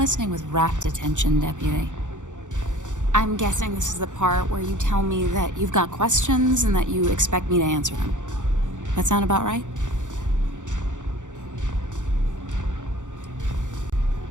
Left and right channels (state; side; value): late; left; 0.86 ms